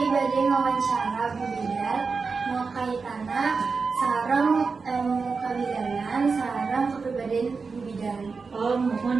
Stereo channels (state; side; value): quieter; left; 4.7 dB